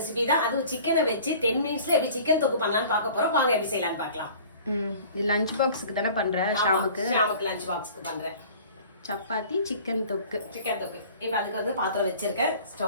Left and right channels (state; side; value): inverted; both; correlation -0.46